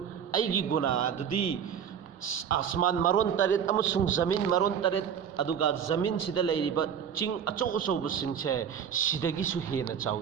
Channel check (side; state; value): left; quieter; 8.0 dB